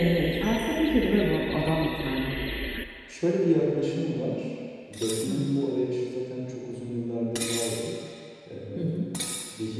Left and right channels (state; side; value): identical; both; correlation 1.00